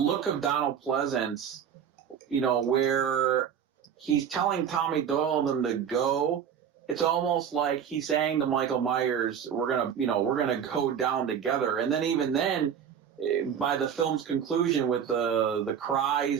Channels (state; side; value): quieter; left; 8.2 dB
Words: of Donald Pleasance, where he's telling Tommy Doyle them to go, it's almost like he's saying to Michael Myers, we're gonna go down together. And then even then, by the film's conclusion with the